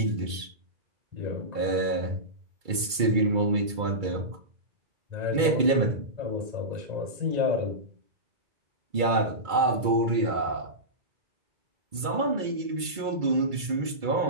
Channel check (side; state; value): left; late; 2.3 ms